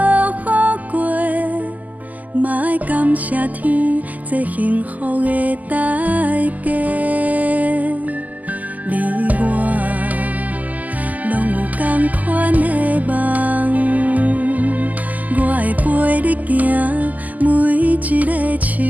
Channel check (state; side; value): late; left; 0.079 ms